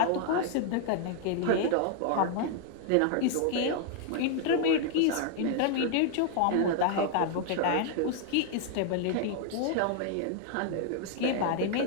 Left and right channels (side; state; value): both; different; correlation 0.00